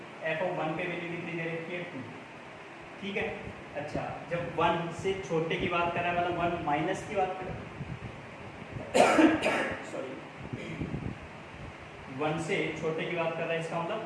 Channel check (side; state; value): both; identical; correlation 1.00